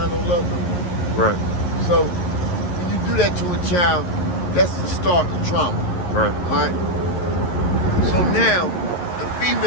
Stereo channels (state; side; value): late; right; 11 ms